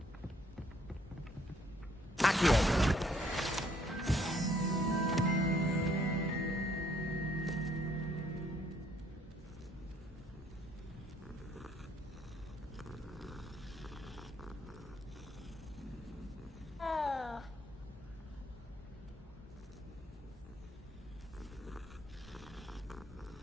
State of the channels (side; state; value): both; normal; correlation 0.66